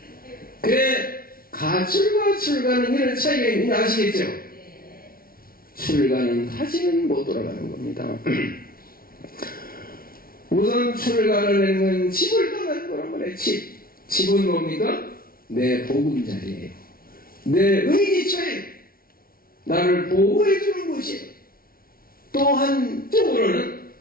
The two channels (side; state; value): right; late; 0.43 ms